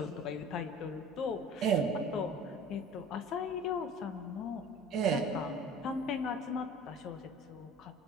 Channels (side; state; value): both; normal; correlation 0.43